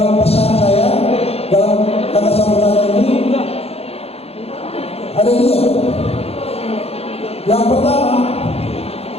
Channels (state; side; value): late; right; 0.29 ms